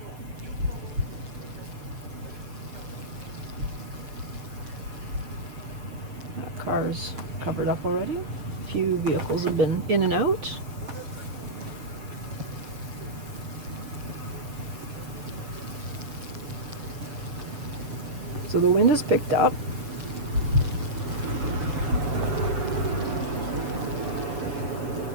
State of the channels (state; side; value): late; left; 7.1 ms